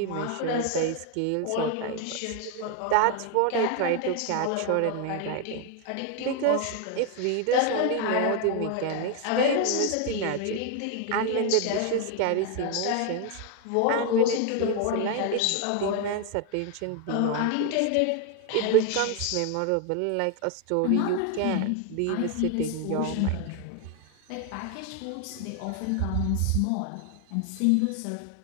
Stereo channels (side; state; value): both; different; correlation 0.01